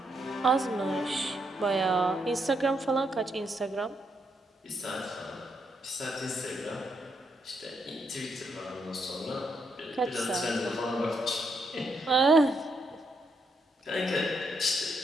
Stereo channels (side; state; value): both; normal; correlation 0.78